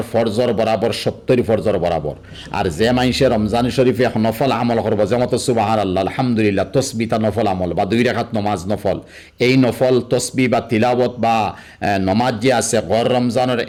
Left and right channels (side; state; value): both; identical; correlation 1.00